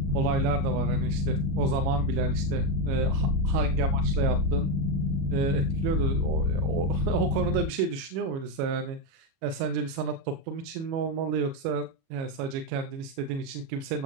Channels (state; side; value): late; left; 37 ms